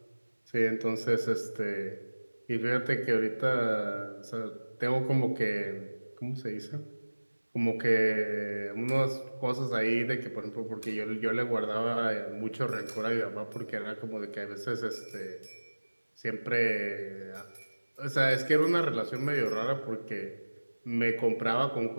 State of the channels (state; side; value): inverted; both; correlation -1.00